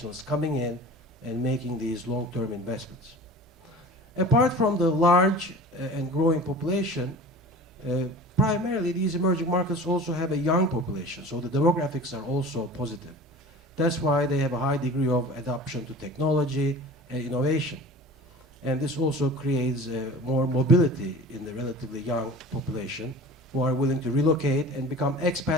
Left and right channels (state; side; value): normal; both; correlation 0.39